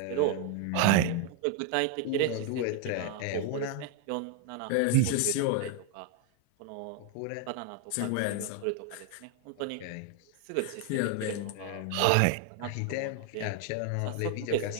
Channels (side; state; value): both; different; correlation 0.00